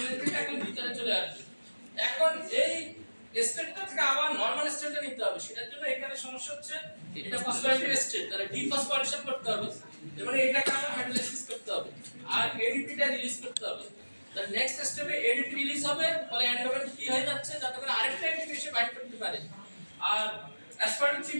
এখন ভিতরে চলে আসবে। এখন এই স্টেটটা থেকে আবার normal স্টেটে নিতে হবে, সেটার জন্য এখানে সমস্যা হচ্ছে এটা ফসফোরাইলেটেড স্টেট, তাহলে ডিফসফোরিলেশন করতে হবে, এবারে এটাকে আবার হাইড্রোলাইসিস করতে হবে আর এডিপিটা রিলিজ করতে হবে। তাহলে নেক্সট স্টেপে এডিপি রিলিজ হবে, ফলে এন্ডোমেন ফ্রি হয়ে যাচ্ছে, যাতে করে আরেকটা এডিপি এসে বাইন্ড করতে পারে, আর অ্যাসপার্টেট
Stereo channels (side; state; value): both; inverted; correlation -1.00